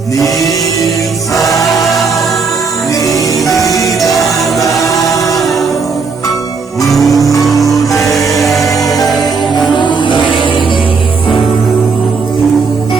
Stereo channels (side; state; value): left; quieter; 4.9 dB